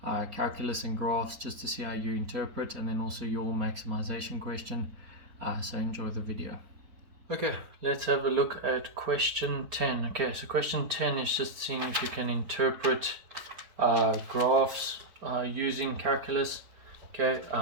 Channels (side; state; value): left; late; 4.3 ms